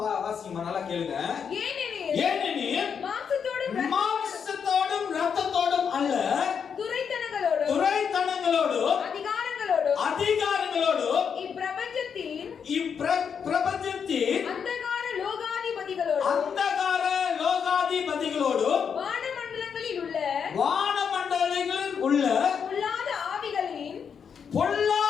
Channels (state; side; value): quieter; right; 6.9 dB